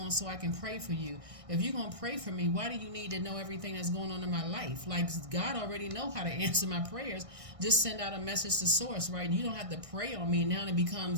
so I can pray for you. If you're going to pray for me, why do you need to know everything that's going on in my life? Like, God already know how to answer my prayers. Just send out a message to source, right? You don't have to pray on me. Now it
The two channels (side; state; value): left; late; 1.6 ms